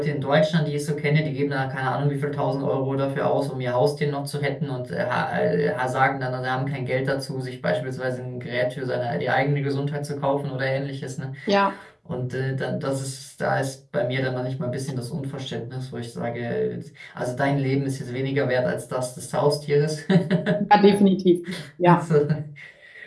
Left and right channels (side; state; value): both; identical; correlation 1.00